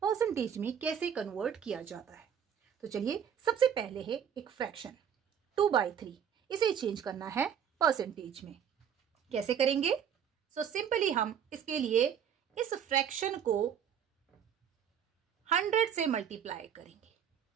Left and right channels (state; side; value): quieter; left; 8.3 dB